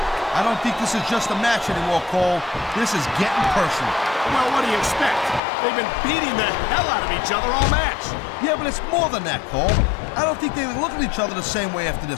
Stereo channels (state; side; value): drops out; right; at 5.4 s